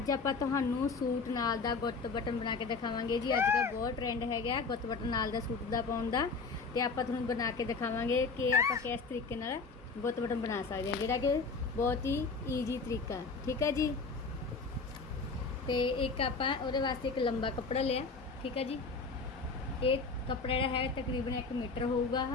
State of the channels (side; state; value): right; quieter; 4.4 dB